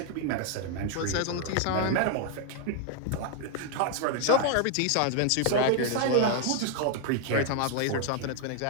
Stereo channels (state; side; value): different; both; correlation 0.00